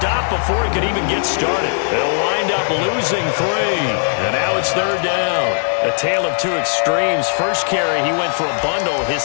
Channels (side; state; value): right; silent; digital silence